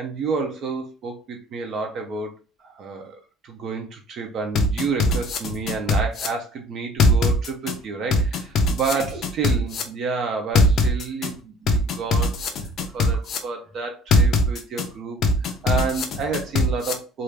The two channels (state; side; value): normal; both; correlation 0.51